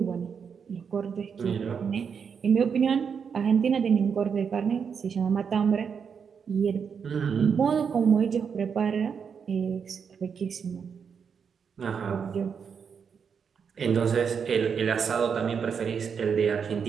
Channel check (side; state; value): left; quieter; 6.6 dB